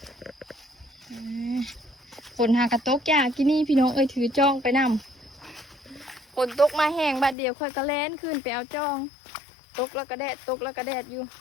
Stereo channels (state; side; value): drops out; right; at 7.4 s